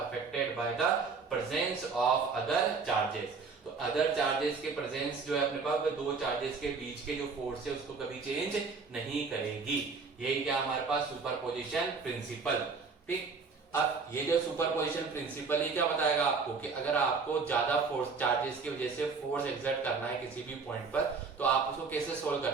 by the presence of other charges. तो अदर चार्जेस के प्रेजेंस जो है अपने पास, वो दो चार्जेस के बीच के जो फोर्स है उसको कभी चेंज नहीं करेगी। यही क्या हमारे पास सुपरपोजिशन प्रिंसिपल। ठीक, अब ये जो सुपरपोजिशन प्रिंसिपल ही क्या बताएगा आपको कि अगर आपको ज्यादा फोर्स चार्जेस की वजह से फोर्स एक्सर्ट करना है किसी भी पॉइंट पर, तो आप उसको कैसे सोल्व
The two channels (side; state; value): left; quieter; 4.8 dB